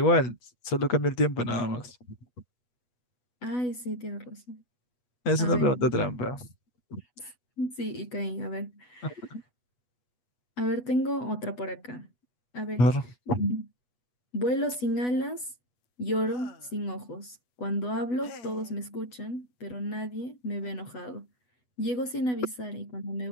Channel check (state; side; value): late; right; 8.1 ms